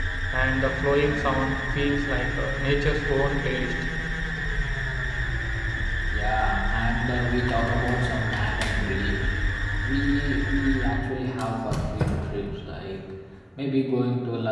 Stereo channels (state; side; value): identical; both; correlation 1.00